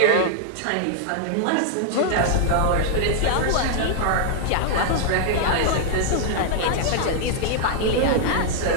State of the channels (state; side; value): different; both; correlation -0.01